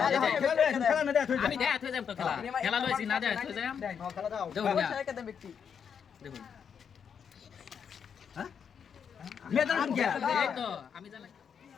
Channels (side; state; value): right; quieter; 7.3 dB